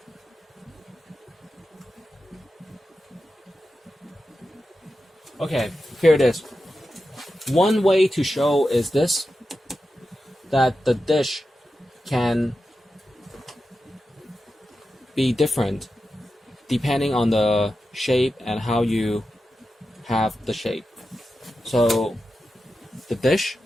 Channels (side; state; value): both; normal; correlation 0.91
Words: Okay, here it is. One way to show is this, that the dish can be different depending on the shape and how you have the shape. So the dish